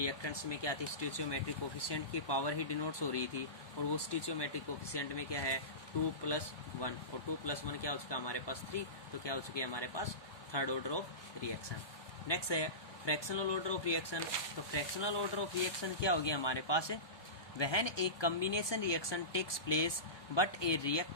में क्या थी? स्टोइचियोमेट्रिक कोफिशिएंट की पावर ही डिनोट्स हो रही थी, और वो स्टोइचियोमेट्रिक कोफिशिएंट में क्या है? 2 + 1, और 2 + 1 क्या हो चुका हमारे पास? 3. तो क्या हो चुकी है हमारे पास? Third order of reaction. Next है फ्रैक्शनल ऑर्डर ऑफ रिएक्शन. तो फ्रैक्शनल ऑर्डर ऑफ रिएक्शन क्या होगी हमारे पास? When a combination reaction takes place but a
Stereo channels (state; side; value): late; right; 1.2 ms